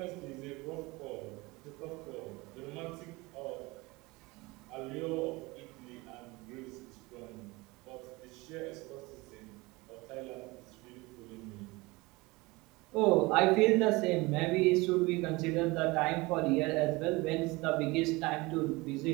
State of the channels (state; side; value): quieter; left; 23.2 dB